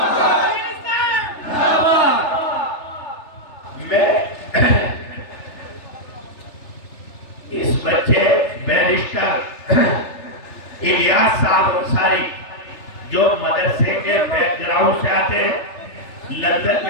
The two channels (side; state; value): right; late; 3.3 ms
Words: میں اس بچے بیرسٹر الیاس صاحب انصاری جو مدرسے کے بیک گراؤنڈ سے آتے ہیں، لندن